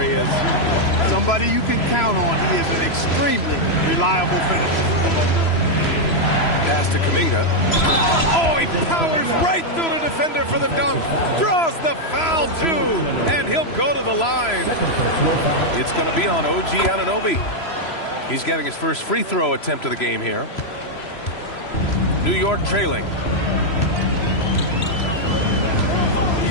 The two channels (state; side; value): late; right; 3.0 ms